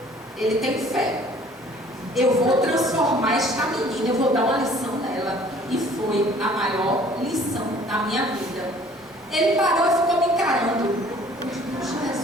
Ele tem fé. Eu vou transformar esta menina, eu vou dar uma lição nela. E foi a maior lição da minha vida. Ele parou e ficou me encarando. Eu digo:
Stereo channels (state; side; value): normal; both; correlation 0.53